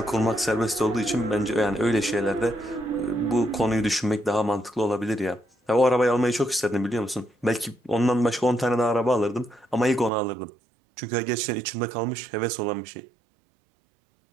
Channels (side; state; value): left; drops out; at 10.1 s